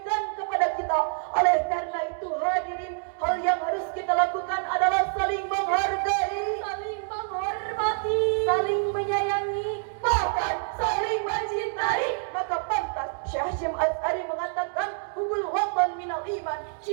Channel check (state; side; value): silent; left; digital silence